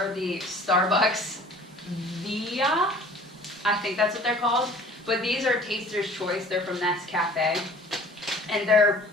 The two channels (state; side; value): normal; both; correlation 0.49